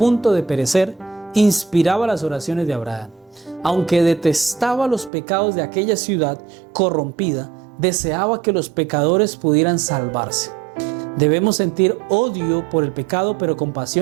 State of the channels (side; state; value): left; drops out; at 5.1 s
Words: de perecer inspiraba las oraciones de Abraham. Aunque detestaba los pecados de aquella ciudad corrompida, deseaba que los pecadores pudieran salvarse. Debemos sentir odio por el pecado, pero